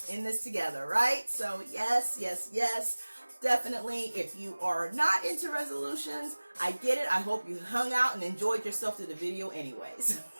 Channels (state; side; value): inverted; both; correlation -1.00